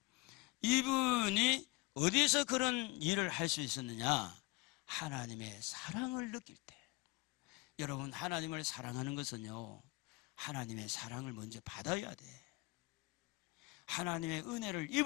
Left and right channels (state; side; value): quieter; right; 23.1 dB